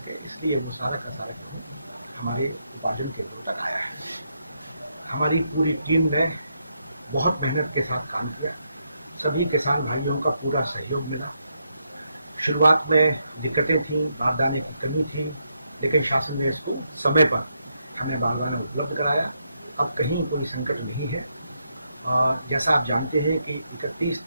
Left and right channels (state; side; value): inverted; both; correlation -0.80